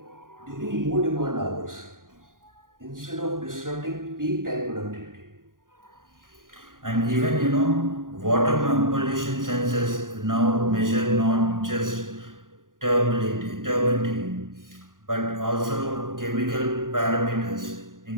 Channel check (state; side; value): late; left; 0.90 ms